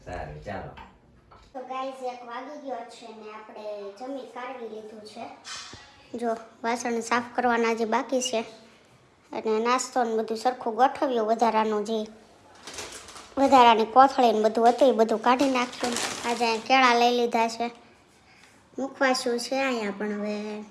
સારું ચાલો. તો ગાઈઝ 1 વાગી ગયો છે ને આપણે જમી કાઢવી લીધું છે. જો વાસણ સાફ કરવાના જે બાકી છે અને નાસ્તો ને બધું સરખું ગોઠવ્યું. વધારાની કોથળી ને બધું હતું એ બધું કાઢી નાખ્યું. આજે કેળા લઈ લીધા છે, મૂકવાશું છે અહીંયા, પણ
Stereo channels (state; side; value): identical; both; correlation 1.00